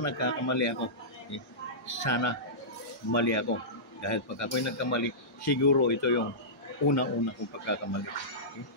ako. Okay? Sana mali ako. Dahil pag ako'y nagkamali, siguro ito yung una-una kong pagkakamali. Okay?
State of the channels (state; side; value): normal; both; correlation -0.17